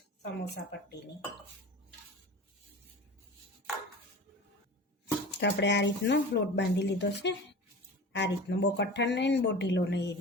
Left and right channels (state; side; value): normal; both; correlation 0.35